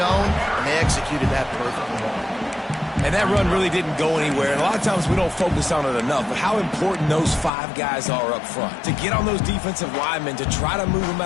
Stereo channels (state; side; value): drops out; right; at 7.5 s